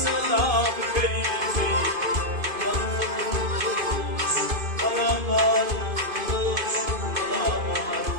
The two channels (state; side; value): late; left; 2.5 ms